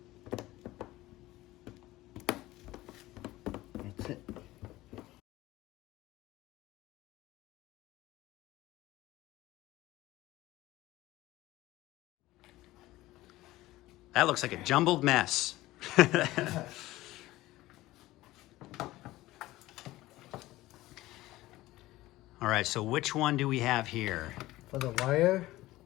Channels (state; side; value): quieter; right; 17.3 dB